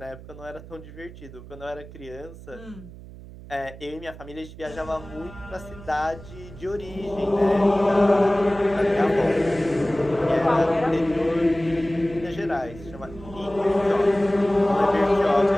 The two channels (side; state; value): right; noise; hum, 16 dB below the sound